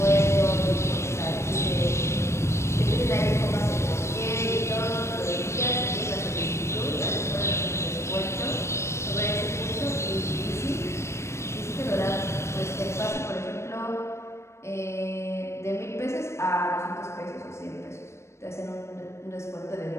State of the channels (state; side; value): late; right; 0.13 ms